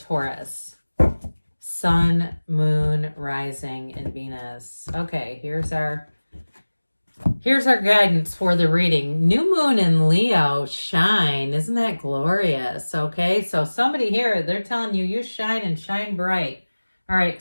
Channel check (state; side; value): inverted; both; correlation -1.00